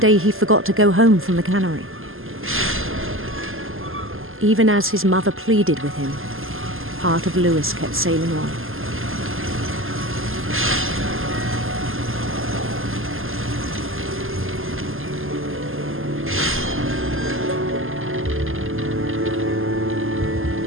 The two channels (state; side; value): late; left; 0.60 ms